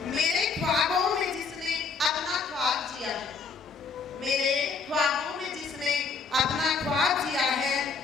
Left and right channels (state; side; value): quieter; right; 5.0 dB